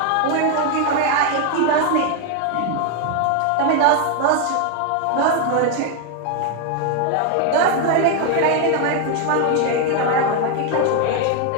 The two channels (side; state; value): both; different; correlation 0.01